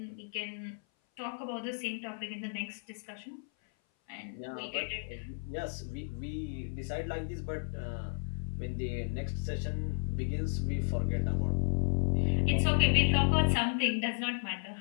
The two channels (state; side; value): silent; right; 55 dB below the other